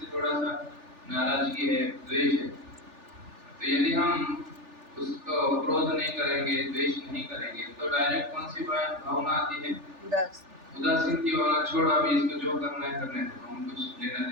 थोड़ा सा नाराजगी है, द्वेष है, तो यदि हम उसको क्रोध नहीं करेंगे, द्वेष नहीं करेंगे, तो डायरेक्ट कौन सी भावना आती है? उदासीन की भावना। छोड़ो अभी इसको जो करना है करने दो, हम कुछ लेना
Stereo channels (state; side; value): late; left; 3.4 ms